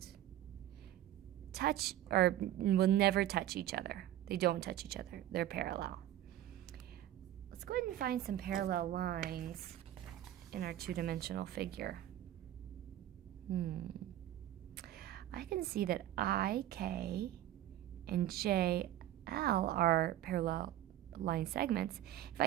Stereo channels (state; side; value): quieter; left; 12.8 dB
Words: touch or will never touch each other. They don't touch each other. They're parallel. Let's go ahead and find some parallel lines in our two-dimensional figure. I can see that I, K, and J, L are parallel line segments. If